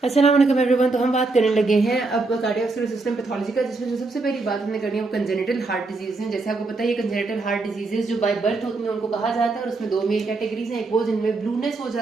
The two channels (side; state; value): left; quieter; 3.6 dB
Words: अस्सलाम वालेकुम एवरीवन। तो हम बात करने लगे हैं अब कार्डियोवैस्कुलर सिस्टम पैथोलॉजी का, जिसमें जो सबसे पहली बात हमने करनी है वो कंजेनिटल हार्ट डिजीज है। जैसे आपको पता है ये कंजेनिटल हार्ट डिजीजेस जो बाय बर्थ होती हैं उनको कहा जाता है, और उसमें दो मेन कैटेगरीज हैं। एक वो जिनमें ब्लूनेस हो